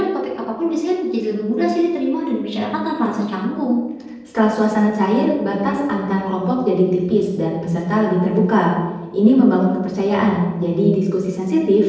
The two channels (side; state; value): both; identical; correlation 1.00